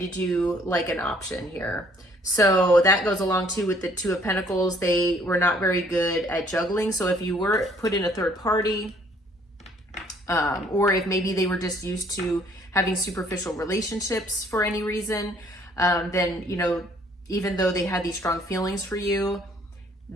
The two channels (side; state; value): both; normal; correlation 0.61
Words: you like an option here. So that goes along too with the Two of Pentacles. They were not very good at juggling. So if you were put in a third party, or if maybe they were just used to having superficial relationships for any reason, then, you know, even though they had these strong feelings for you,